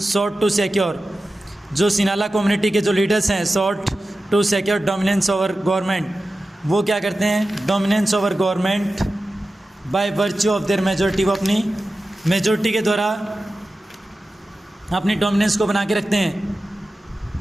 sought to secure, जो सिनाला कम्युनिटी के जो लीडर्स हैं, sought to secure dominance over government, वो क्या करते हैं, dominance over government by virtue of their majority, वो अपनी मेजोरिटी के द्वारा अपनी डोमिनेंस को बना के रखते हैं।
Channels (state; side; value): normal; both; correlation 0.94